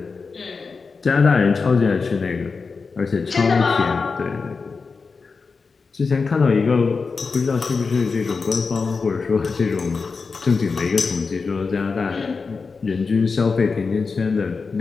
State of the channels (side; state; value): right; quieter; 4.7 dB